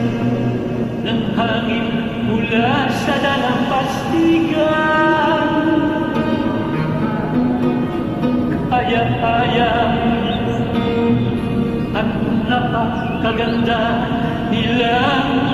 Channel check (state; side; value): identical; both; correlation 1.00